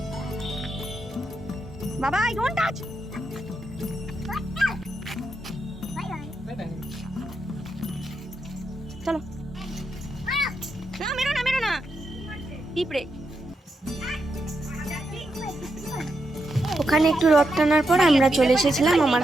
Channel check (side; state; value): both; normal; correlation 0.84